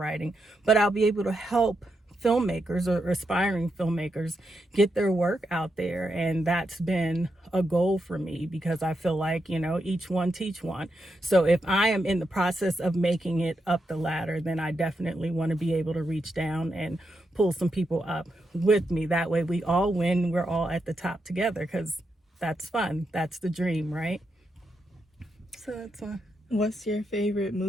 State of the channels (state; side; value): normal; both; correlation 0.84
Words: but I'll be able to help filmmakers or aspiring filmmakers get their work out there. And that's been a goal for me, because I feel like, each one teach one. So if I am in the process of making it up the ladder, then I definitely want to be able to reach down and pull some people up with me. That way we all win. We're all at the top together, because that's fun. That's the dream, right? So that's fun. What's your favorite